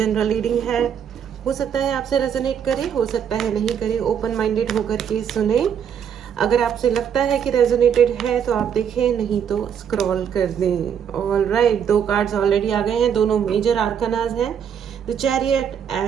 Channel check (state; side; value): quieter; left; 8.2 dB